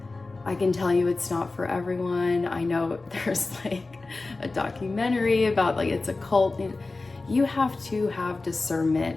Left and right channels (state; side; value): quieter; right; 3.5 dB